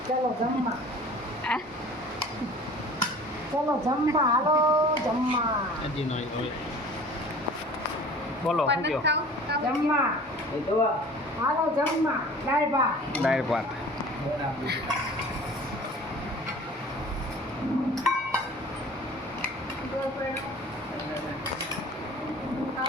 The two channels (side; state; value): both; normal; correlation 0.45